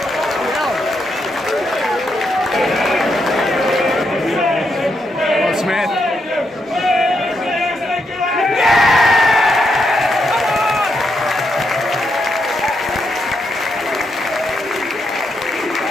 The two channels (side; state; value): both; normal; correlation 0.81